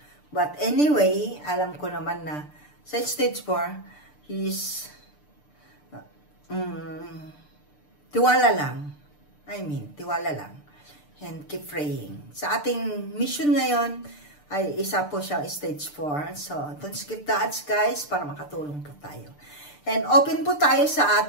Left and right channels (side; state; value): right; late; 6.8 ms